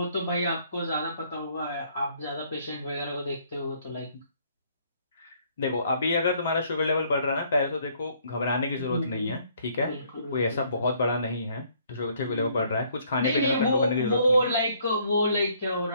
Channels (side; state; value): both; inverted; correlation -0.64